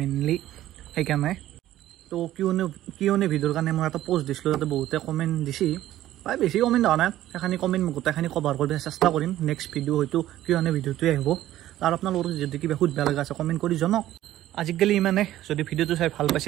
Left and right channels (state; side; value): quieter; left; 13.8 dB